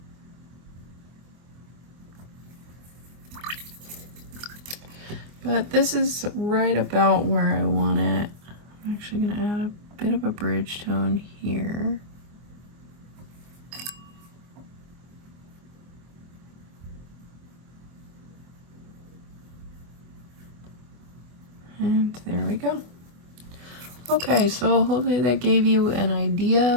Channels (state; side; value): late; left; 24 ms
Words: But this is right about where I want it. I'm actually going to add a bit of a bridge tone here. And there we go. Okay, so hopefully that gave you an